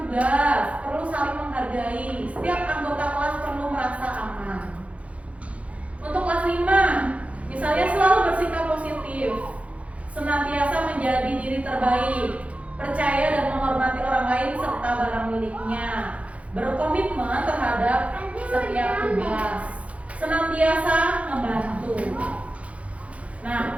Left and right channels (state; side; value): late; left; 0.064 ms